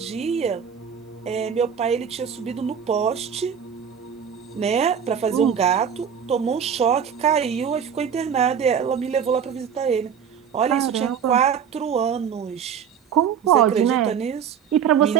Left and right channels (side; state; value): left; quieter; 7.6 dB